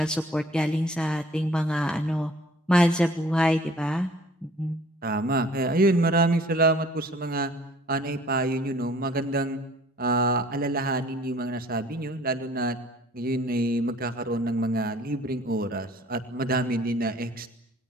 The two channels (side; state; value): both; normal; correlation 0.52